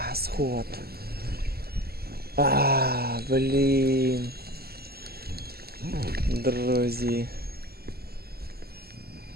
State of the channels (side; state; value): left; late; 0.46 ms